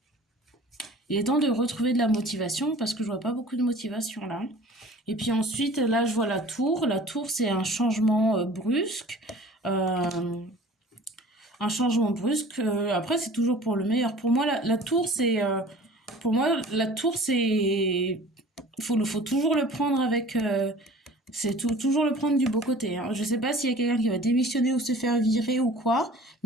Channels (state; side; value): normal; both; correlation 0.45